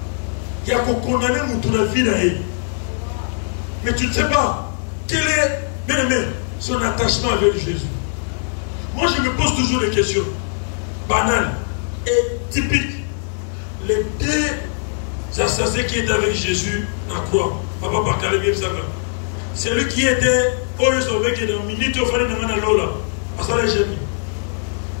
Il y a qu'on condamne notre vie là. Mais tu ne sais pas quel est, bien aimé, son attachement avec Jésus. Moi, je me pose toujours des questions banales et typiques. Les deux assassins qui étaient avec Jésus à croix, Papa Bakale, celui qui était au lieu qui est dans une minute au fond de Lola.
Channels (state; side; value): silent; right; digital silence